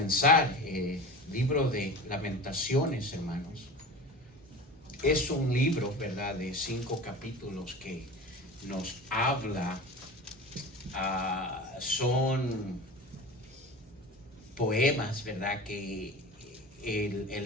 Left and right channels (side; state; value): both; normal; correlation 0.33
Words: libro de Lamentaciones, hermanos, es un libro, ¿verdad?, de 5 capítulos que nos habla, son poemas, ¿verdad?, que el